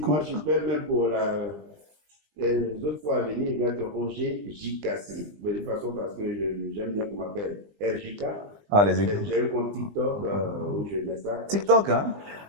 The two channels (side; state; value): left; late; 20 ms